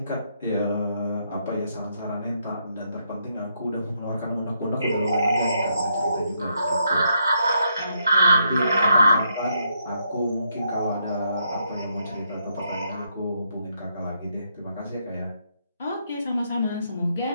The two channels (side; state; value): both; inverted; correlation -0.76